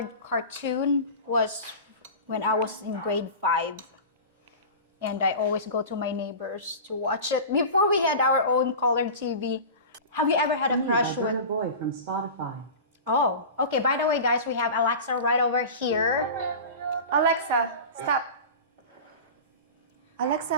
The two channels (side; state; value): both; inverted; correlation -0.32